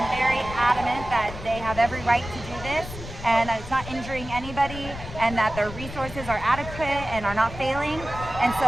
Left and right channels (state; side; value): noise; left; rumble, 11 dB below the sound